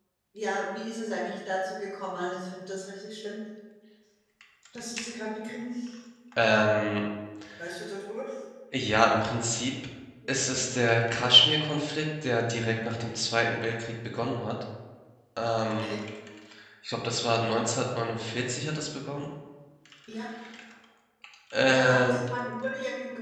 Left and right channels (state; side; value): identical; both; correlation 1.00